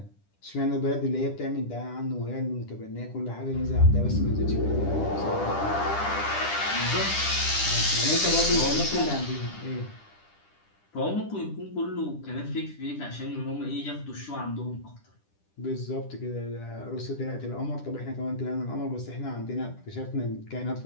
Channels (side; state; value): right; late; 10 ms